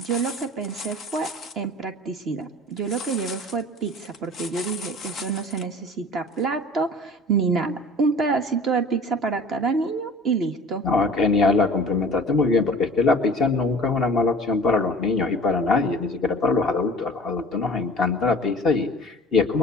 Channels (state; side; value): normal; both; correlation 0.44